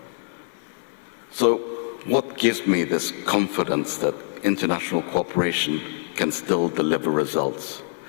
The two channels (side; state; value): right; silent; 62 dB below the other